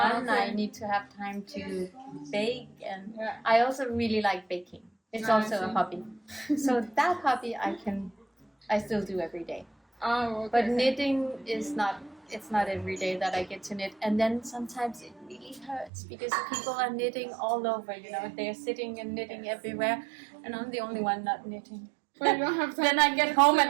Okay. I need to have time to bake, and Yeah. I also really like baking. It's I also a see. hobby. So that hobby I still do every day. Oh, okay. But knitting is not. It's not every day that I get to knit, and then sometimes it really hurts because people are knitting all over. You know, they're sitting and knitting everywhere, and I'm the only one not knitting. Well, you don't have time. Then I get home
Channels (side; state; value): left; drops out; at 15.9 s